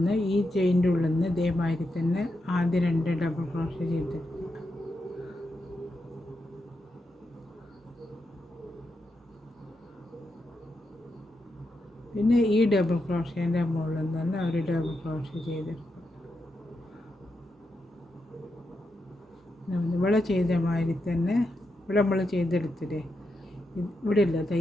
ഈ ചെയിൻ്റെ ഉള്ളിൽ നിന്ന് ഇതേമാതിരി തന്നെ ആദ്യം 2 ഡബിൾ ക്രോഷേ ചെയ്തെടുക്കുക. പിന്നെ ഈ ഡബിൾ ക്രോഷേൻ്റെ മുകളിൽ നിന്ന് തന്നെ ഒരു ഡബിൾ ക്രോഷേ ചെയ്തെടുക്കുക. ഇവിടെ ചെയ്ത മാതിരി തന്നെ ഇവിടെ നമ്മൾ ചെയ്തെടുത്തില്ലേ, ഇവിടെ ഇല്ല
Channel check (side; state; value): both; normal; correlation 0.85